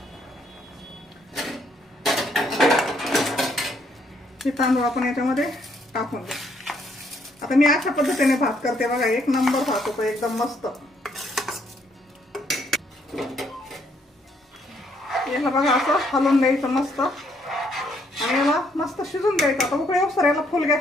हे तांदूळ आपण याच्यामध्ये टाकून देऊ। आता मी अशा पद्धतीने भात करते बघा, 1 नंबर भात होतो एकदम मस्त। याला बघा असं हलवून द्यायचं मस्त, आणि याला मस्त शिजून द्यायचं। आता उकळी येऊस तर याला फुल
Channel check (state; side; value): normal; both; correlation 0.70